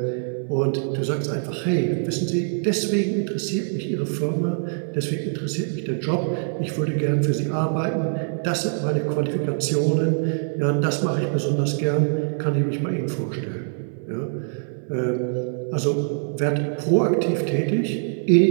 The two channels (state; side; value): silent; left; digital silence